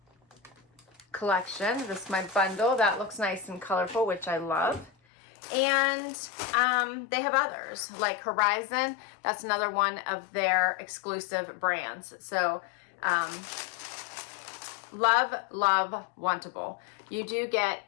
collection. This is my bundle. That looks nice and colorful, which I love. And they have others like Horizon. That's another one of their exclusive brands. So love Wantable. You do get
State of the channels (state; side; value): drops out; right; at 4.9 s